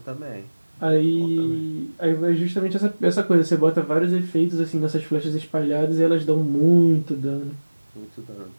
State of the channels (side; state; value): both; inverted; correlation -1.00